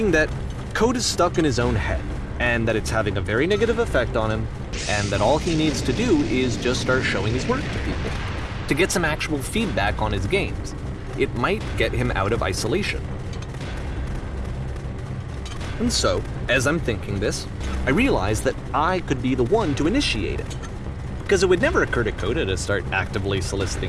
that Code is stuck in his own head, and that it's having a very negative effect on him, and that all he needs to do is just start showing his work to people, to get some actual feedback on his games. It might get him out of isolation. And so, as I'm thinking this, I realize that I could be the one to initiate it. Because it would never occur to Coda to start actively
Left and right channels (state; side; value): identical; both; correlation 1.00